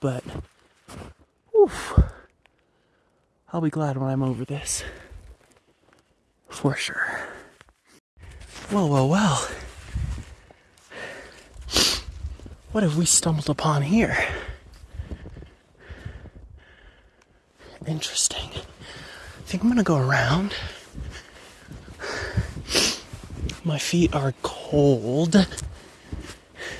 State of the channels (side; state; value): both; identical; correlation 1.00